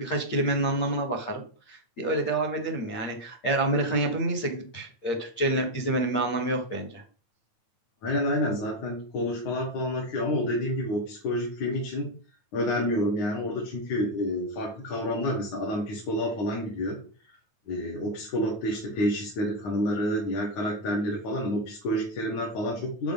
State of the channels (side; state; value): right; late; 9.1 ms